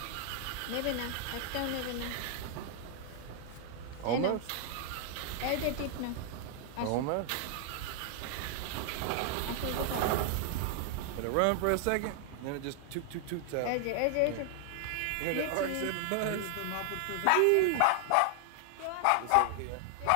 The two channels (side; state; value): both; different; correlation 0.00